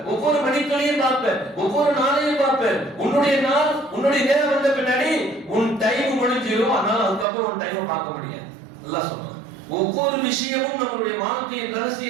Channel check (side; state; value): left; drops out; at 7.2 s